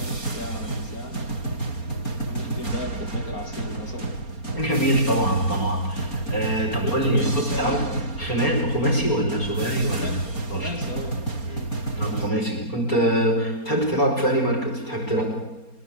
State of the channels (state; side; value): late; right; 4.3 ms